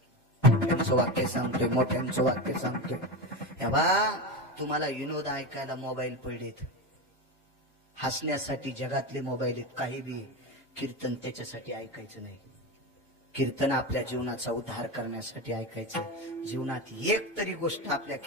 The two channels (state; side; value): normal; both; correlation 0.19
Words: मोठ्यांचं वाक्य सांगतोय, मोठ्यांचं वाक्य सांगतोय. हे बा, तुम्हाला विनोद ऐकायला मोबाईल पडलेत, हसण्यासाठी जगातले मोबाईल आहेत, काही बी. कीर्तन त्याच्यासाठी ऐकायचं नाही. कीर्तन आपल्या जीवनाचा उद्धार करण्यासाठी ऐकायचं. जीवनात एक तरी गोष्ट आपल्या